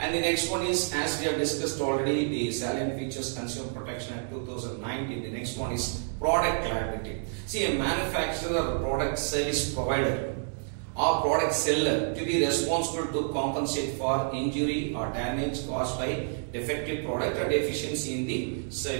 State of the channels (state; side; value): silent; left; digital silence